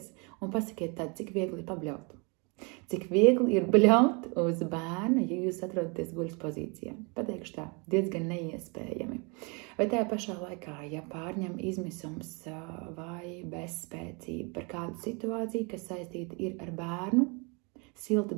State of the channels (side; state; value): left; quieter; 31.8 dB